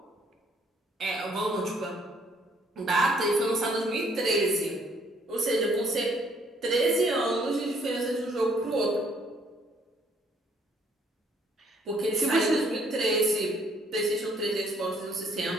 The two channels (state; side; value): normal; both; correlation 0.65